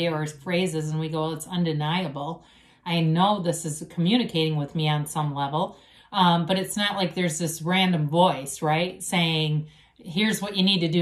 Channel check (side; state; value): both; identical; correlation 1.00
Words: or phrases, and we go, well, it's undeniable. I know this is communicating with me on some level, but it's not like there's this random voice, right, saying, here's what you need to